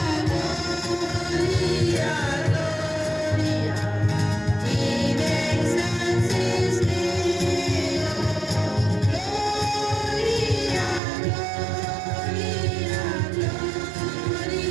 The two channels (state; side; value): drops out; left; at 11.0 s